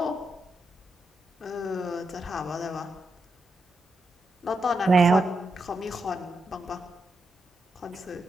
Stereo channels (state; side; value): normal; both; correlation 0.84